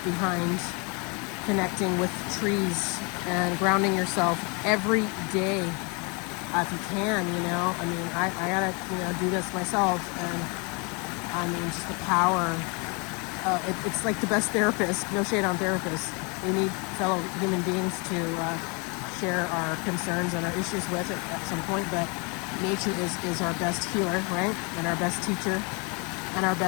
connecting with trees and grounding yourself every day, if you can. I mean, I gotta do this myself, and I mean, just the power. It's like the best therapist. No shade on therapists. We need fellow human beings to share our concerns and our issues with at some point, but nature is our best healer, right? And our best teacher and our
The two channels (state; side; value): quieter; right; 32.1 dB